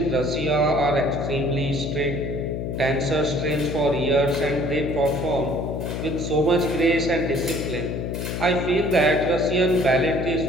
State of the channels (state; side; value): noise; left; hum, 4 dB below the sound